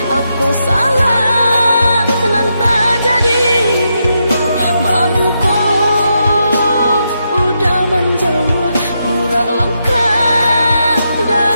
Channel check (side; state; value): both; inverted; correlation -0.83